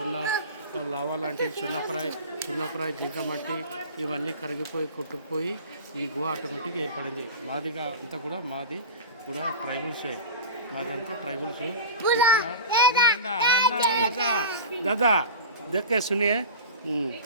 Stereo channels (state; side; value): inverted; both; correlation -0.31